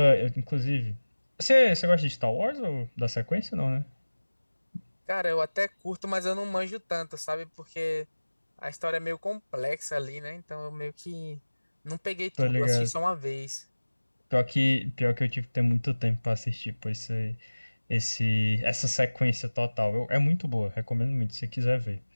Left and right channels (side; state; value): both; inverted; correlation -1.00